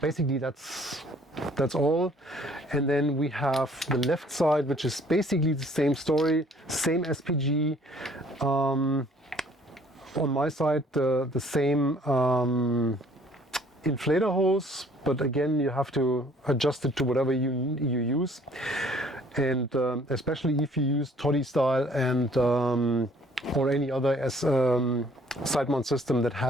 that's all. And then we have the left side, which is basically the same story, same SPG. On my side, the same inflator hose, but again you have to adjust it to whatever you use, and especially if you use toddy style and or any other side mount system that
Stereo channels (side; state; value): both; normal; correlation 0.58